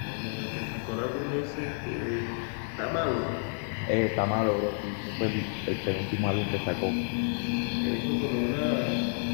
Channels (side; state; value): right; silent; 58 dB below the other